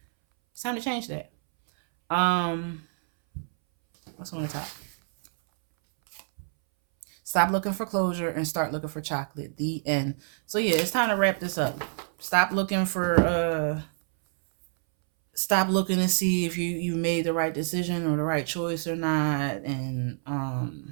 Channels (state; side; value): silent; left; 60 dB below the other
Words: It's time to change that. What's on the top? Stop looking for closure and start looking for chocolate. The end. So yeah, it's time to wrap this up. Stop looking to see if you made the right decision or the right choice or not. And